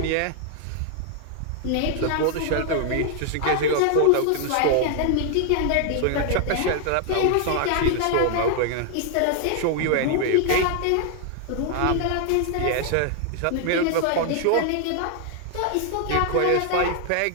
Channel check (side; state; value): both; different; correlation 0.00